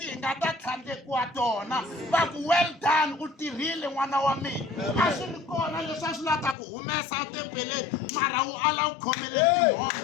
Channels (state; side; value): drops out; right; at 6.6 s